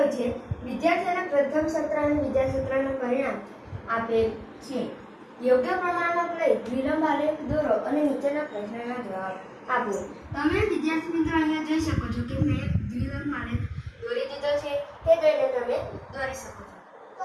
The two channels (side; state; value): both; identical; correlation 1.00